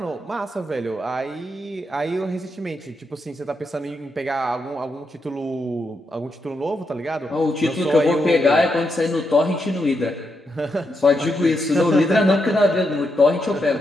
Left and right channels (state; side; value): normal; both; correlation 0.83